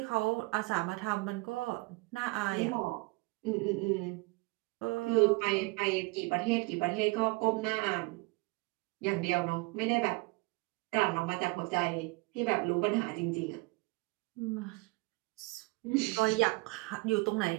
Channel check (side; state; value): left; quieter; 25.1 dB